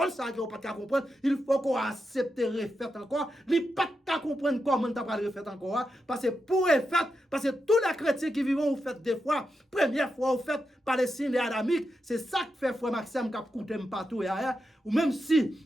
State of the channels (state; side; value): normal; both; correlation 0.87